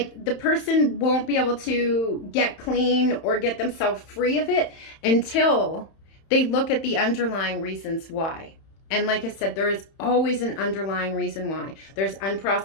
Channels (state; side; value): late; right; 31 ms